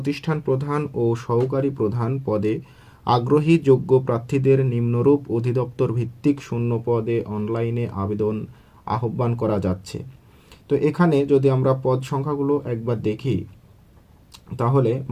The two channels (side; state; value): both; identical; correlation 1.00